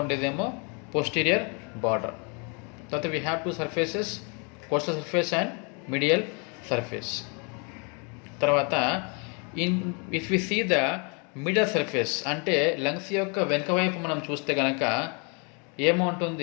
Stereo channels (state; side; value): quieter; right; 34.7 dB